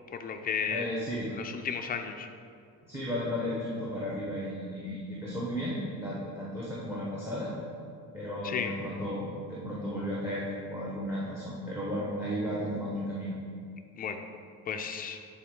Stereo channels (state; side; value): normal; both; correlation 0.36